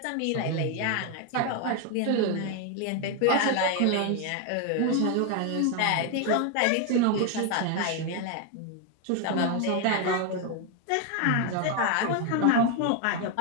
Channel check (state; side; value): different; both; correlation 0.01